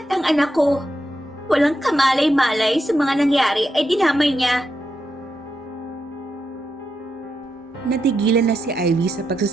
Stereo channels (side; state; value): both; normal; correlation 0.84